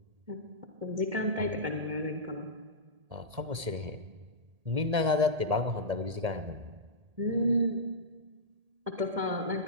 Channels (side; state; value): left; late; 1.8 ms